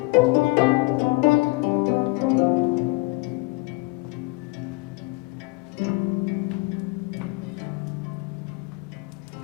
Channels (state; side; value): quieter; right; 25.2 dB